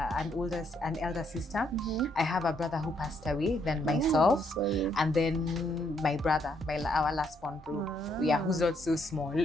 elder sister. I have a brother who passed away, then myself, and then my brother, our last born bro. Yeah, who's not so small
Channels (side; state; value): both; normal; correlation 0.73